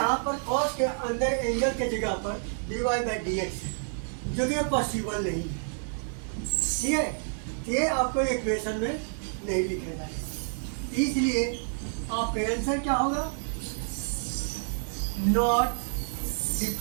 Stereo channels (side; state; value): left; silent; digital silence